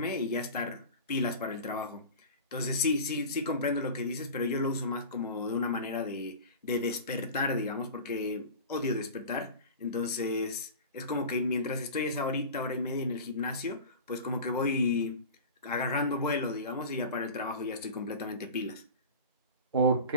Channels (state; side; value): inverted; both; correlation -0.33